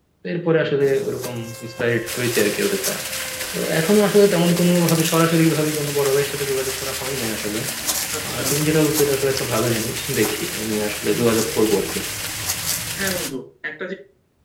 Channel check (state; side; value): identical; both; correlation 1.00